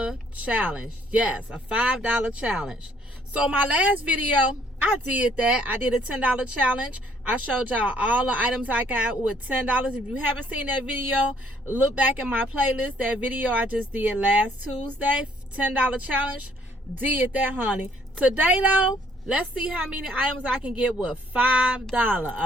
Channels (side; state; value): both; normal; correlation 0.64